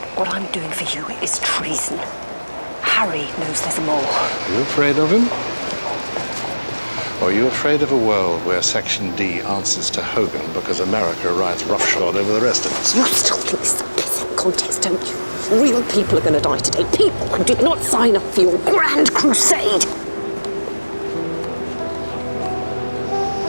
What I'm doing for you is treason. Harry knows there's more. Are you afraid of him? Or are you afraid of a world where Section D answers to Hogan because America rides roughshod over the rest of us? You still think this is a pissing contest, don't you? Real people are going to die today. People who did not sign up for your grand crusade.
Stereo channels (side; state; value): both; inverted; correlation -1.00